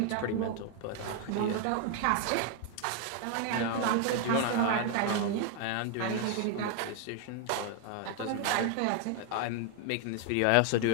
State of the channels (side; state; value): both; different; correlation 0.01